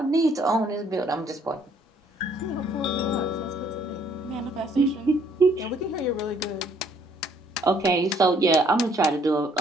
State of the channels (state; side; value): normal; both; correlation 0.64